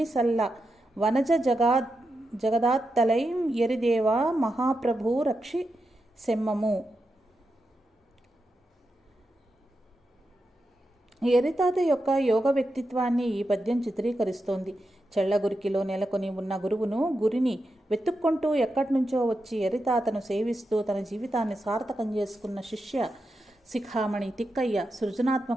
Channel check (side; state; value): both; normal; correlation 0.88